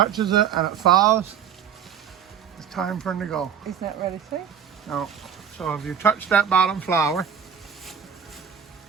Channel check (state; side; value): quieter; left; 8.1 dB